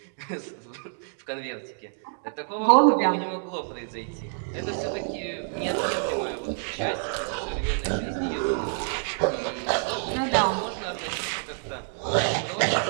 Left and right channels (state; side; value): silent; left; digital silence